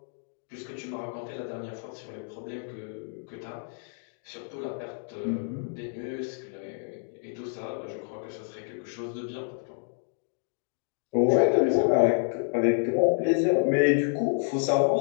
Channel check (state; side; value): silent; right; 59 dB below the other